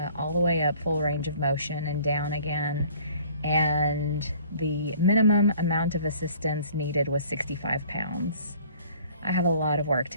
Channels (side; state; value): both; inverted; correlation -0.53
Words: all the way up, full range of motion, and down again. And the minimum amount of assistance needed was 65 pounds. I have a lot of work